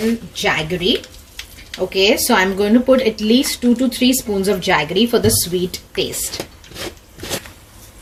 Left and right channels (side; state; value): both; identical; correlation 1.00